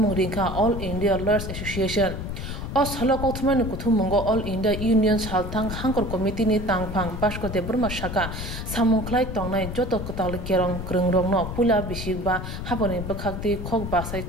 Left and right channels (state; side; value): noise; left; rumble, 6 dB below the sound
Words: ringka All India Lawyers Association Os halo kothumani kuthumungo All India Union Shaltang hangor committee ni tangphang basko de burma shaka samungklai tongnai joto kotal kerong krongrogno pula bisigba haboni bakakti khok basai